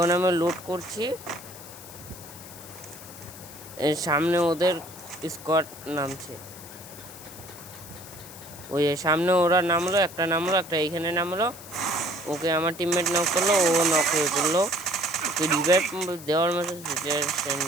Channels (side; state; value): left; noise; hiss, 16 dB below the sound